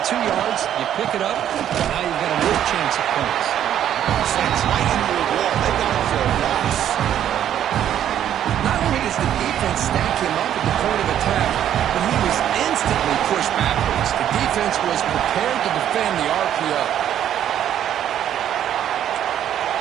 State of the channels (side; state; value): left; quieter; 10.6 dB